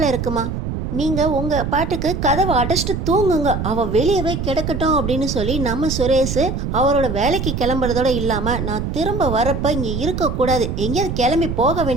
இருக்குமா, நீங்கள் உங்கள் பாட்டுக்கு கதவை அடைச்சிட்டு தூங்குங்க, அவள் வெளியவே கிடக்கட்டும் அப்படின்னு சொல்லி நம்ம சுரேஷ் அவரோட வேலைக்கு கிளம்புறதோட இல்லாமல் நான் திரும்ப வரப்போ இங்கே இருக்கக்கூடாது, எங்கேயாவது கிளம்பி போக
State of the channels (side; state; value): right; noise; rumble, 3 dB below the sound